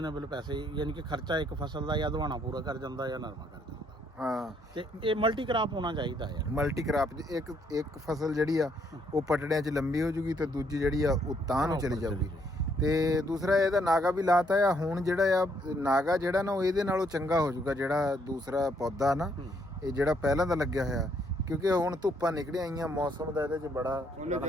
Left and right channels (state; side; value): normal; both; correlation 0.70